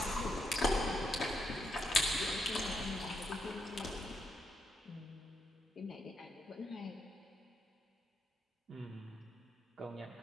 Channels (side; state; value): both; normal; correlation 0.78